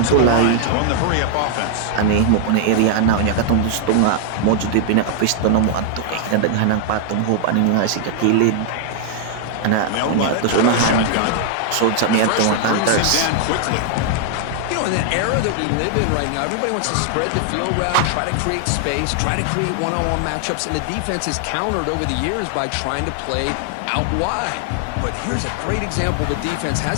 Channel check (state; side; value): different; both; correlation 0.00